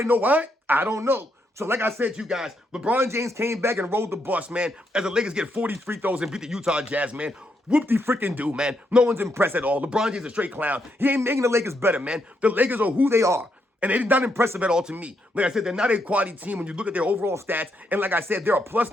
know why? I don't know. So like I said to you guys, LeBron James came back and rolled the bus, man, as the Lakers get 40 free throws and beat the Utah Jazz, man. Whoop-de-freaking-do, man. No one's impressed at all. LeBron James is a straight clown. He ain't making the Lakers better, man. The Lakers are who they are. And they're not impressive at all to me. Like I said, they're not a quality team when you look at their overall stats. And like I said, they're a plus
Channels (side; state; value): both; normal; correlation 0.78